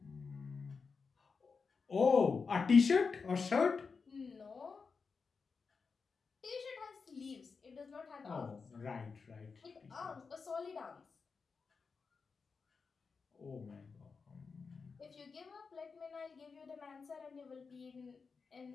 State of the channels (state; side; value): quieter; right; 5.0 dB